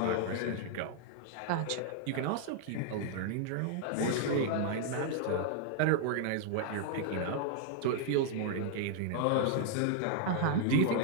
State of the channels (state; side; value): different; both; correlation -0.01